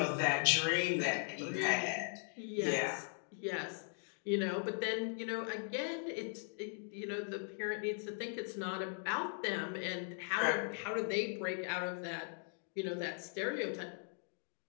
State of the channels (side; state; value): right; silent; 52 dB below the other